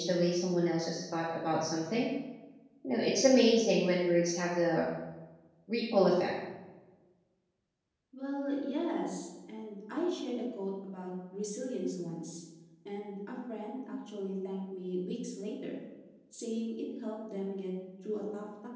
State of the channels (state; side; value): identical; both; correlation 1.00